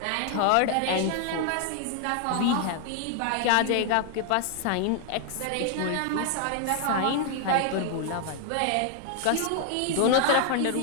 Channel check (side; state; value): both; different; correlation 0.00